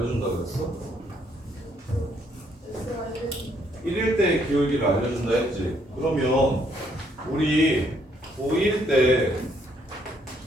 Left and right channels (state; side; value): normal; both; correlation 0.69